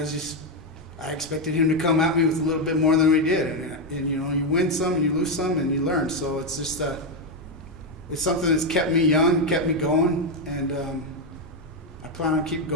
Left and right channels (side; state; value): both; normal; correlation 0.05